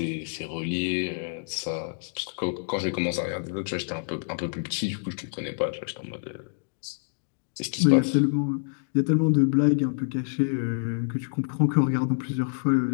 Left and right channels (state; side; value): silent; right; digital silence